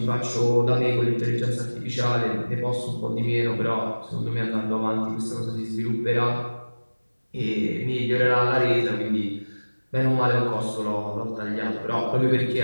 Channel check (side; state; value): both; inverted; correlation -1.00